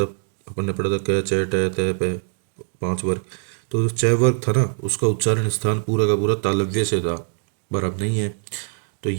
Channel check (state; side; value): silent; left; digital silence